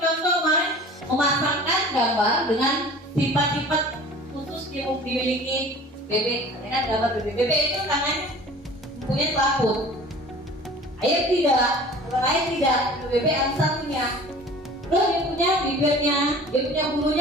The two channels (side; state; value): both; normal; correlation 0.44